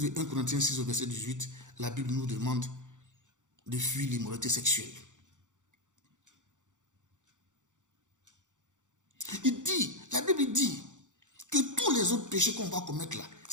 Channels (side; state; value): left; late; 0.86 ms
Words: de 1 Corinthiens 6 au verset 18, la Bible nous demande de fuir l'immoralité sexuelle. La Bible dit que tous les autres péchés qu'on va commettre là,